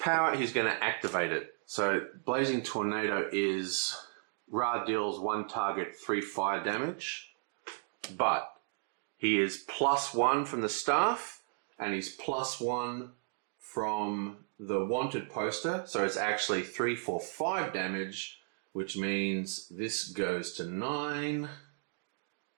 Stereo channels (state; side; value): silent; left; digital silence